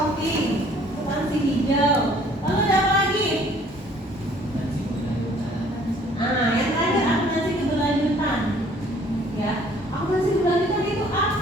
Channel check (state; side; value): normal; both; correlation 0.57